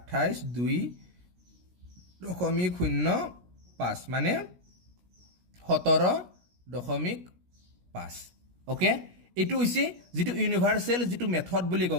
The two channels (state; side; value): late; left; 17 ms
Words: 2.05, মানে 17.5। অ'কে, এইটো হৈছে যিটো ইউনিভাৰ্চেল যিটো মেথড বুলি